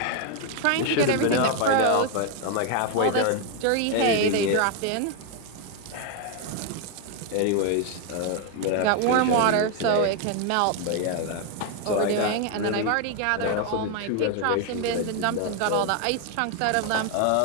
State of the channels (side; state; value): both; different; correlation 0.01